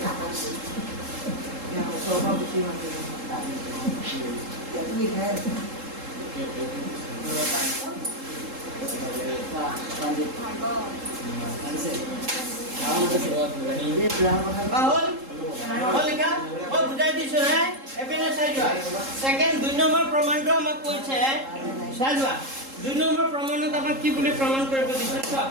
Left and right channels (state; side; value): late; left; 3.7 ms